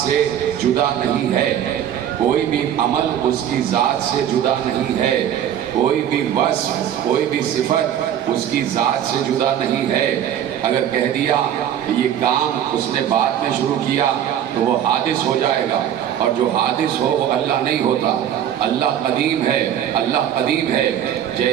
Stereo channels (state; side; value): quieter; left; 10.1 dB